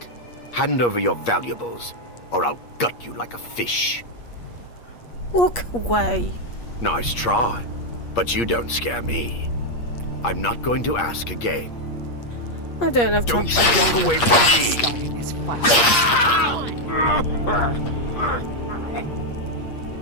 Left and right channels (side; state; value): right; late; 8.5 ms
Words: Hand over your valuables, or I'll gut you like a fish. Walk away. Nice try, but you don't scare me. I'm not going to ask again. I don't have time. Don't walk away from me! Starting this fight.